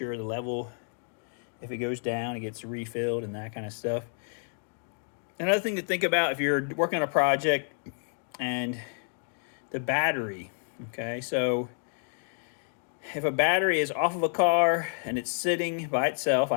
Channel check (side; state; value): right; silent; 58 dB below the other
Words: the level, if it goes down, it gets refilled and that kind of stuff. Another thing to think about if you're working on a project and the battery. Okay, so if a battery is off of a car and it's sitting by itself, I